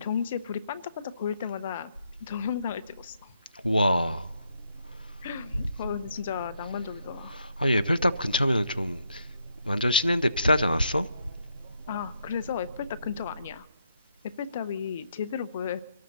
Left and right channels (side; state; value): both; inverted; correlation -0.75